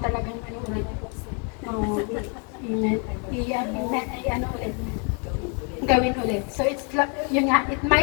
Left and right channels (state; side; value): quieter; right; 38.1 dB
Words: ulit. Ulit. Gawin ulit. So it's yun nga, it